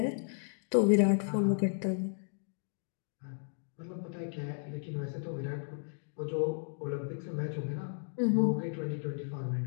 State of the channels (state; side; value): silent; right; digital silence